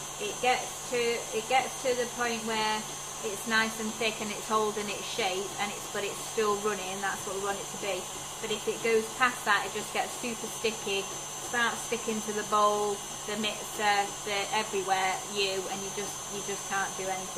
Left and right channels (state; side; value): identical; both; correlation 1.00